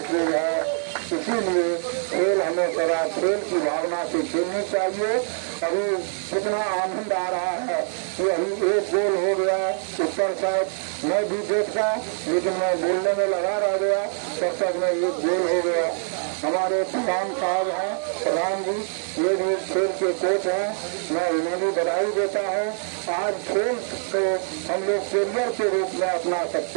चीज है। इसीलिए खेल हमें सदा खेल की भावना से खेलनी चाहिए। अभी कितना आनंद आ रहा है कि अभी एक गोल हो गया ऊपर साइड मैं भी देखता, लेकिन मैं बोलने में लगा रह गया, तब तक में एक गोल हो गया। हमारे प्रधान साहब हैं, प्रधान जी, ये भी खेल के कोच हैं, मैं उन्हें भी बधाई देता हूँ। आज खेल को हम लोग कैरियर के रूप में अपना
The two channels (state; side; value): silent; left; digital silence